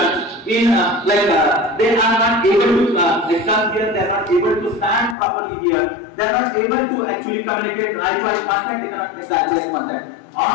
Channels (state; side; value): drops out; right; at 5.2 s